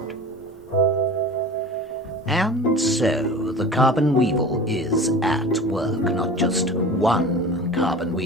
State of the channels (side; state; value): both; normal; correlation 0.36